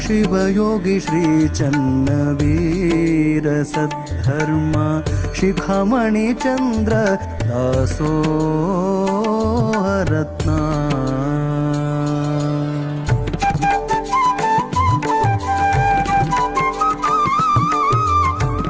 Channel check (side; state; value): both; identical; correlation 1.00